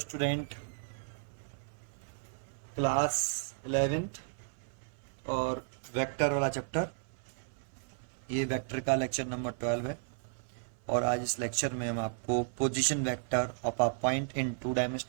class 11th और vector वाला chapter. ये वेक्टर का लेक्चर नंबर 12 है। और आज इस लेक्चर में हम आपको position vector of a point in 2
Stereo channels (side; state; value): left; silent; 55 dB below the other